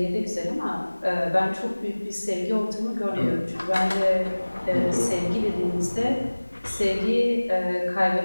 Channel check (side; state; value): both; inverted; correlation -1.00